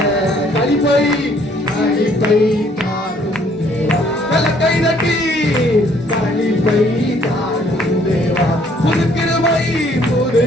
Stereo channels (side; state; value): both; normal; correlation 0.63